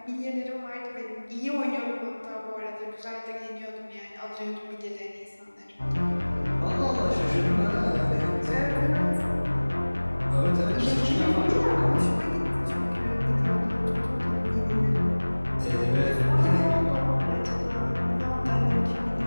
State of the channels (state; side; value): inverted; both; correlation -1.00